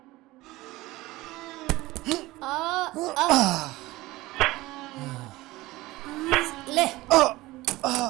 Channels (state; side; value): quieter; left; 19.1 dB